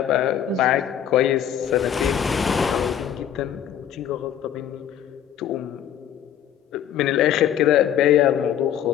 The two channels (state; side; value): quieter; right; 9.8 dB